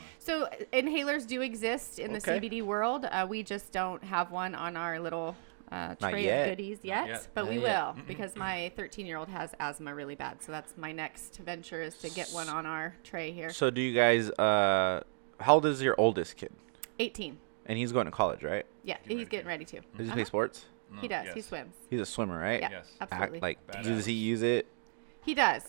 So inhalers do exist in the Okay. CBD world. We just don't have one on our little tray yet. of goodies Not yet, yet. but we Not yet. will because my 13-year-old has asthma really bad. So that's my next venture is to get one on our tray here. So do you guys? How old is your oldest kid? 18. And he's going to college, right? Yeah, he's getting ready to. Does he play sports? No, He does. yes. He swims. He's a swimmer, right? Yeah, Yes. absolutely. Like, Badass. does he use it? He does.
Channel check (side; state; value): left; silent; digital silence